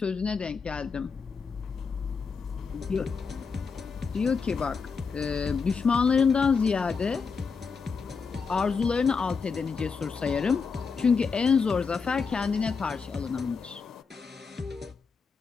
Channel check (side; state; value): right; quieter; 5.3 dB